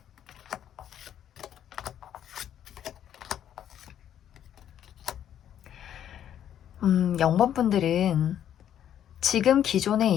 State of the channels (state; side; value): quieter; right; 10.2 dB